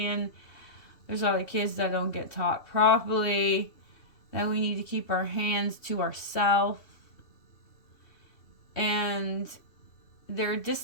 There's a lot of kids that don't get taught properly. That we need to keep our hands to ourselves. And their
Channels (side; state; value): right; late; 2.7 ms